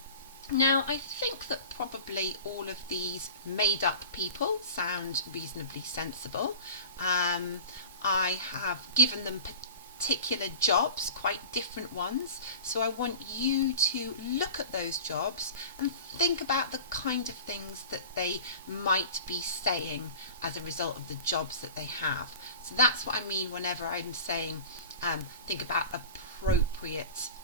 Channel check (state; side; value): inverted; both; correlation -0.37